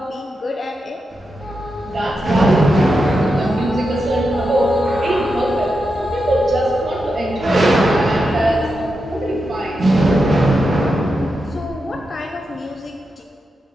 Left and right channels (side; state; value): both; normal; correlation 0.87